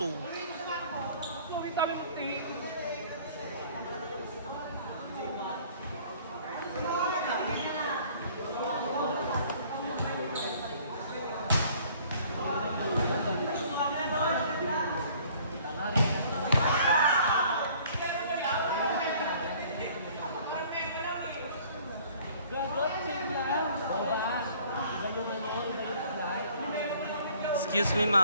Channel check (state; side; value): inverted; both; correlation -0.54